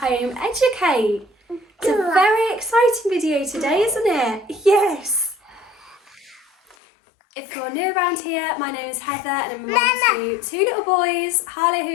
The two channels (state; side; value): drops out; right; at 6.8 s